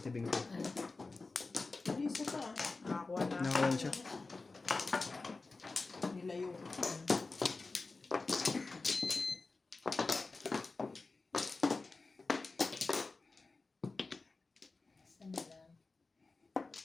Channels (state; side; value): quieter; right; 3.7 dB